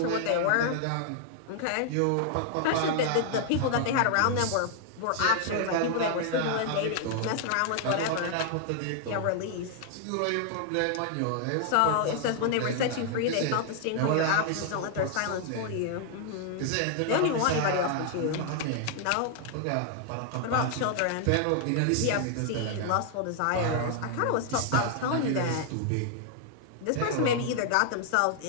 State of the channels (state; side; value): different; both; correlation 0.00